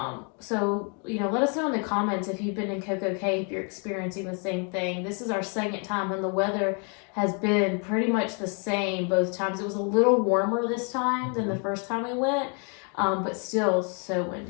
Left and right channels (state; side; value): quieter; right; 37.6 dB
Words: So, let us know in the comments if you've been in Coco Cay, if you're experiencing the same thing. This is our second time, and the weather has been pretty much the same both times. It was a little warmer this time than the first time we went, but still so